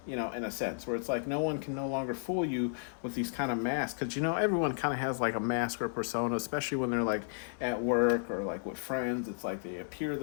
in a sense, where it's like no one can no longer fool you with these kind of masks. Because, everyone kind of has like a mask or persona, especially when they're like at work or like with friends. It's like they appear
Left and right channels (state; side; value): silent; right; digital silence